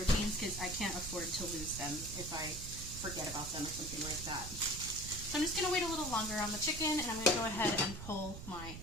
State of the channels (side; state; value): right; noise; rumble, 10 dB below the sound